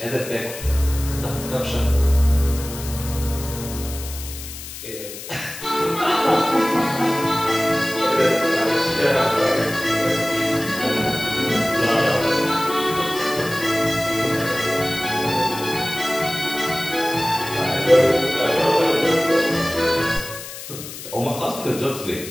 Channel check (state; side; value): noise; left; hiss, 11 dB below the sound